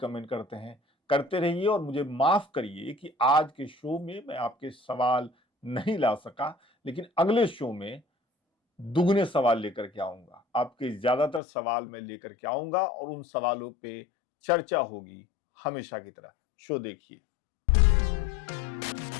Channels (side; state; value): right; drops out; at 11.4 s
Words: करते हैं। करते रहिए और मुझे माफ करिए कि आज के शो में मैं आपके सवाल नहीं ला सका, लेकिन अगले शो में दुगने सवाल लेकर के आऊंगा। आपके ज्यादातर सवाल मैं लेकर के आऊंगा और उन सवालों पे चर्चा होगी हमेशा की तरह। शो देखिए।